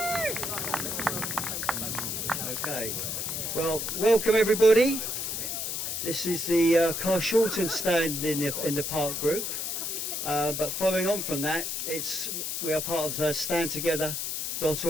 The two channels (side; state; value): left; noise; hiss, 2 dB below the sound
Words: Okay. Well, welcome everybody. This is the Carshalton stand in the park group. But following on from that, we are part of